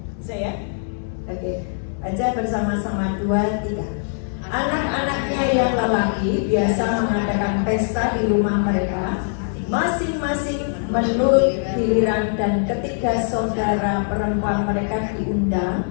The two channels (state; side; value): silent; right; digital silence